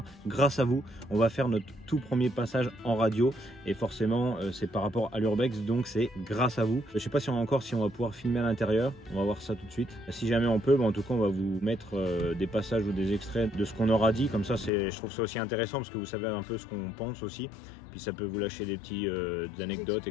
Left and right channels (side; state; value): right; drops out; at 14.7 s